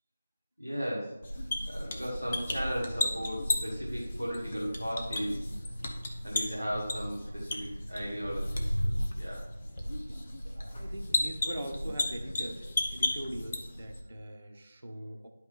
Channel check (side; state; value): both; inverted; correlation -0.94